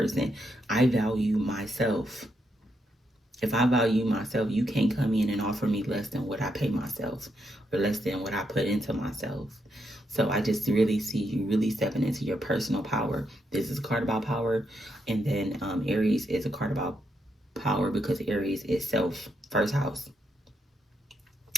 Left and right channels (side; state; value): both; normal; correlation 0.80